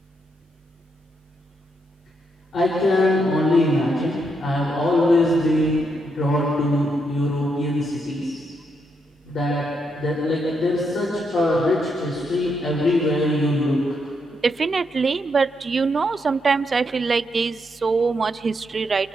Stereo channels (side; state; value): both; normal; correlation 0.79